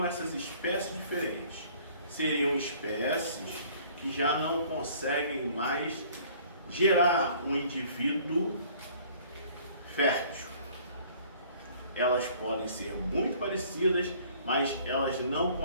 essas espécies diferentes? Seriam espécies que já não conseguem mais gerar um indivíduo fértil. Elas podem ser muito parecidas, mas elas não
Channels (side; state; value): both; inverted; correlation -0.54